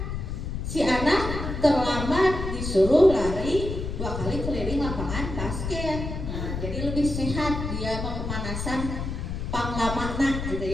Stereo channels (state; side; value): noise; left; rumble, 5 dB below the sound